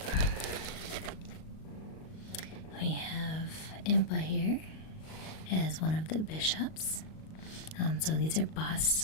We have Impa here as one of the bishops. So these are busts.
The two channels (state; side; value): late; right; 38 ms